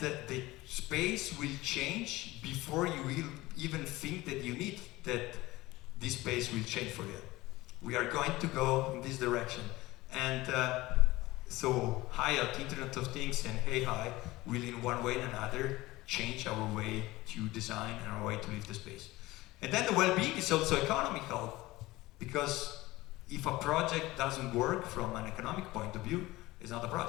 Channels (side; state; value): right; quieter; 19.1 dB